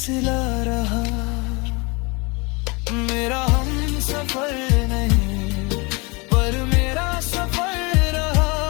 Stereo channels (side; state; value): right; quieter; 27.8 dB